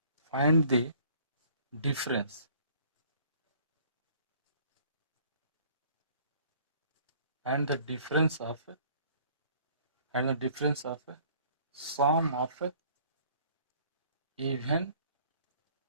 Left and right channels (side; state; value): both; inverted; correlation -0.57